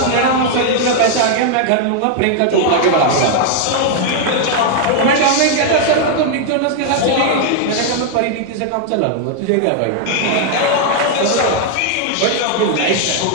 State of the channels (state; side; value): different; both; correlation 0.00